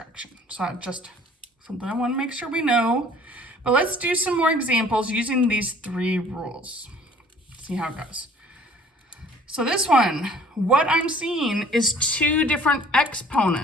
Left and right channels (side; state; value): both; normal; correlation 0.53